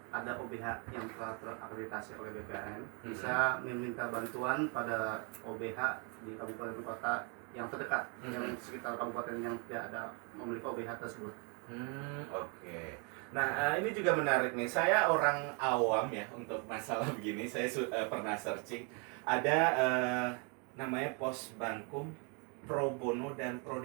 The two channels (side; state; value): left; quieter; 35.0 dB